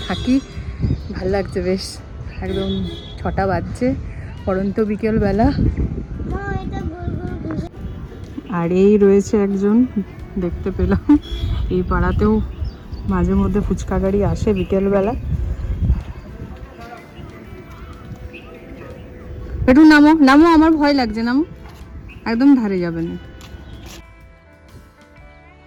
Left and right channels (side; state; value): both; identical; correlation 1.00